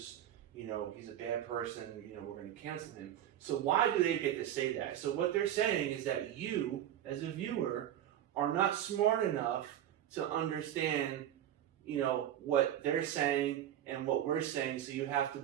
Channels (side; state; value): left; quieter; 11.2 dB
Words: you know, he's a bad person, you know, we're going to cancel him. So why do they get to say that? So what they're saying is that you, as a viewer, are not smart enough to understand, you know, what they're saying and what we're saying, so you have to